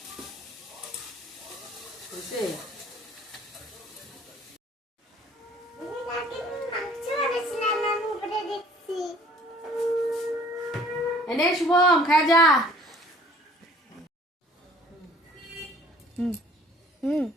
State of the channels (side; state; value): both; normal; correlation 0.54